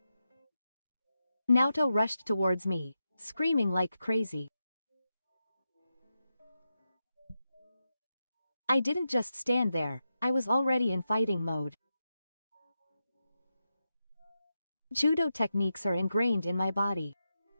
Naoto rushed towards me, screaming like crazy. I didn't just stand there, I was already in fighting mode. Judo techniques are ingrained in my body.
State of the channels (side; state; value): both; inverted; correlation -0.88